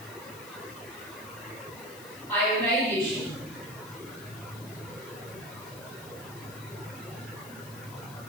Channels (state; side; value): noise; left; hiss, 16 dB below the sound